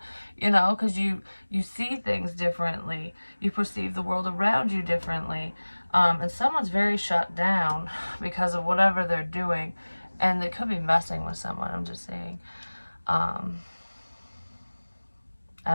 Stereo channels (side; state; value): both; inverted; correlation -1.00